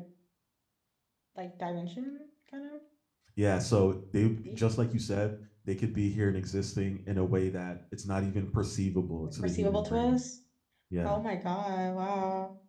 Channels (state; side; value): identical; both; correlation 1.00